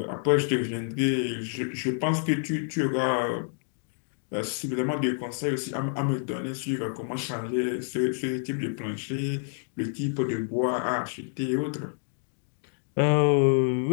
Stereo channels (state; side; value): silent; right; digital silence